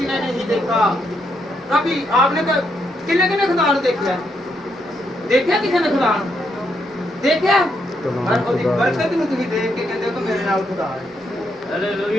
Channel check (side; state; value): both; normal; correlation 0.78